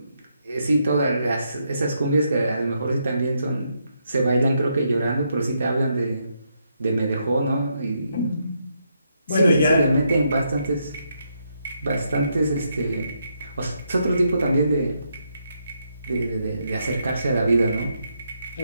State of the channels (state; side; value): inverted; both; correlation -0.79